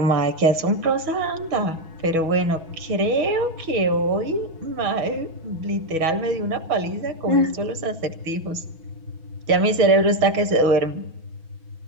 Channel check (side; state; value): left; late; 6.2 ms